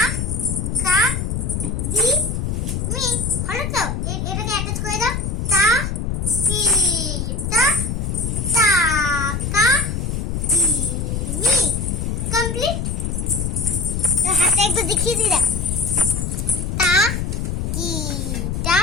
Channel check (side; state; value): left; noise; rumble, 2 dB below the sound